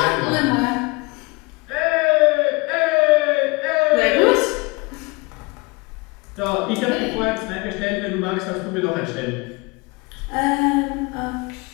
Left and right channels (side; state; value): right; quieter; 26.5 dB